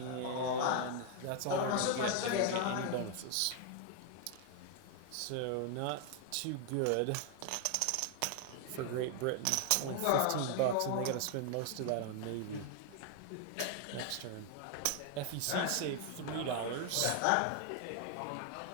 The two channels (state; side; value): different; both; correlation 0.00